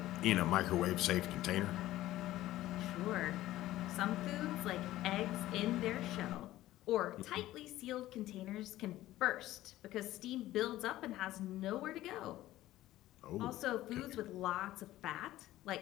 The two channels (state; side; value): quieter; right; 15.3 dB